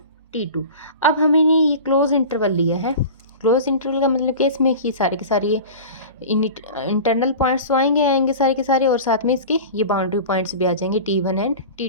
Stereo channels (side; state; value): both; inverted; correlation -0.35